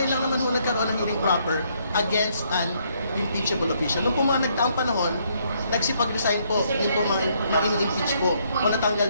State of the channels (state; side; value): inverted; both; correlation -0.71